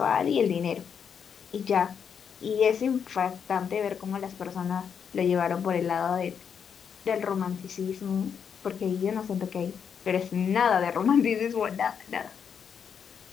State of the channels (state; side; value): quieter; right; 7.2 dB